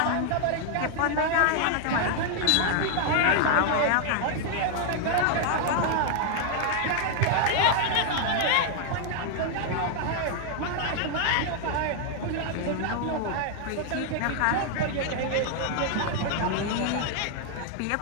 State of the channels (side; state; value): both; different; correlation 0.00